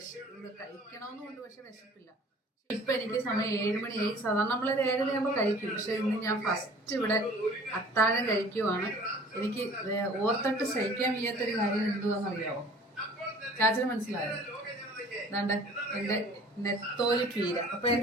കഴിക്കണമെന്നുണ്ട്, പക്ഷെ വിശപ്പില്ല. ഇപ്പം എനിക്ക് സമയം 7 മണിയായി. സാധാരണ നമ്മളൊരു 7:30 ആകുമ്പോൾ കഴിക്കും. പക്ഷെ ഇന്ന് ഞാൻ ഫസ്റ്റ് ഇവിടെ അത്താഴം കഴിക്കുവാണ്. എനിക്ക് ഓർത്തിട്ട് സഹിക്കാൻ വയ്യാത്തൊരു കാര്യം എന്തുവാണെന്നറിയാമോ? ചാച്ചന് മനസ്സിലായോ? അതാണ്ട് എൻ്റെ നെത്തോലി പീര. അപ്പം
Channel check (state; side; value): normal; both; correlation 0.49